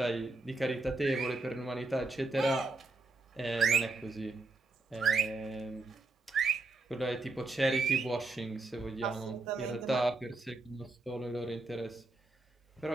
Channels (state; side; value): quieter; left; 3.3 dB